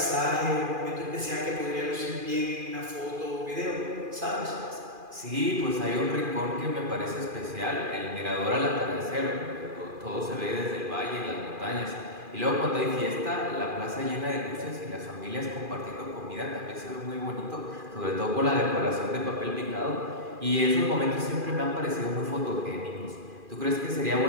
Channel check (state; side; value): late; left; 2.4 ms